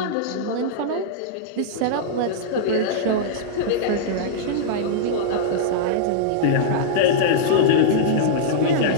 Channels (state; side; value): different; both; correlation -0.03